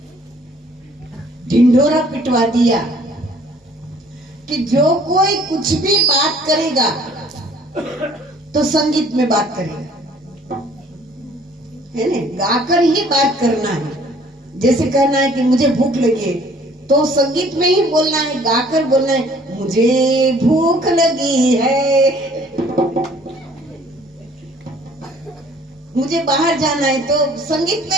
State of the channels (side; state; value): both; normal; correlation 0.56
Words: ढिंढोरा पिटवा दिया कि जो कोई कुछ भी बात करेगा तो संगीत में बात करेगा, है ना, गाकर ही बात करना है। जैसे कहना है कि मुझे भूख लगी है तो संगीत में ही बोलना है, गाकर बोलना है मुझे भूख लगी है। मुझे बाहर जाना है तो संगीत